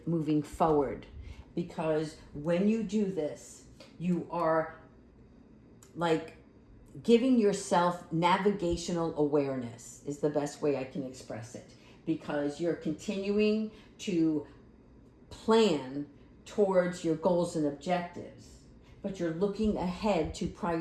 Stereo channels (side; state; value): both; identical; correlation 1.00